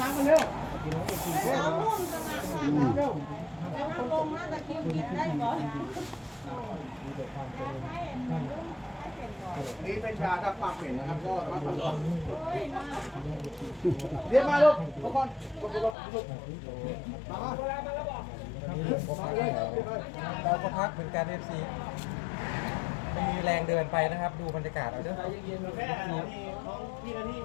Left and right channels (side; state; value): right; drops out; at 16.0 s